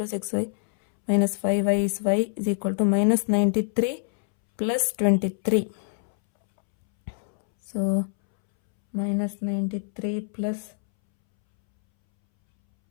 6y minus 5y is y is equal to minus 93 plus 23. So minus 93 plus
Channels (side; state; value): right; silent; 62 dB below the other